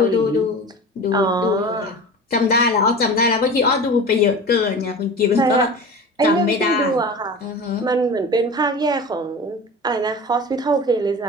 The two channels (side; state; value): both; normal; correlation 0.34